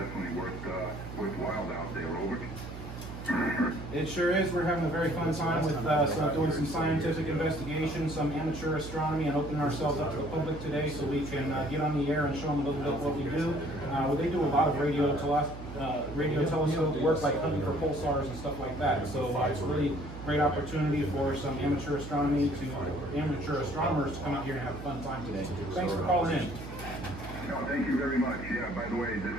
worthwhile out there, over. It sure is. We're having a very fun time with doing some scientific investigation, some amateur astronomy, and opening ourselves up to the public today so we can get on the air and show them a little bit what we do. They do a lot of radio telescope work, like hunting for pulsars and stuff like that. So it's a really great opportunity for some amateur astronomers to come out here and have a fun time today. Thanks for calling in. No, thank you very much. Yeah, by the way, this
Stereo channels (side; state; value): right; noise; hum, 11 dB below the sound